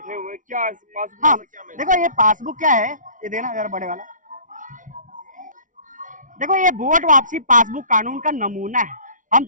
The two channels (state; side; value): late; left; 0.38 ms